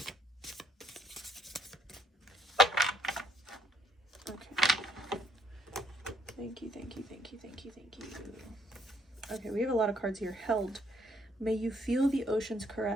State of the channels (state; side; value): normal; both; correlation 0.68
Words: Okay. Thank you, thank you, thank you, thank you, thank you. Okay, we have a lot of cards here. Held. May you feel the ocean's